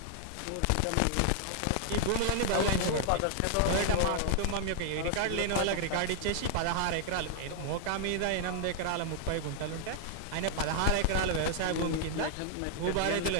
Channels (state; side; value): different; both; correlation 0.00